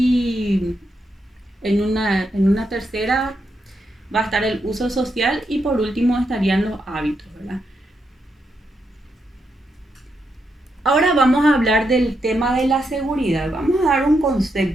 en una tercera va a estar el uso social, y por último estarían los hábitos, ¿verdad? Ahora vamos a hablar del tema de la seguridad. Vamos a dar un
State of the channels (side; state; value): both; normal; correlation 0.82